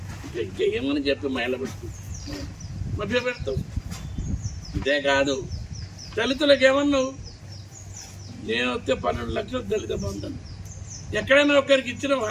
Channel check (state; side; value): identical; both; correlation 1.00